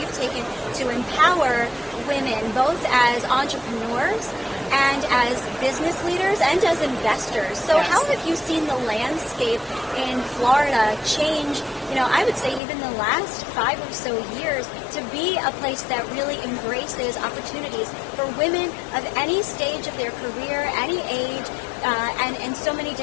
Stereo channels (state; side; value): drops out; right; at 12.6 s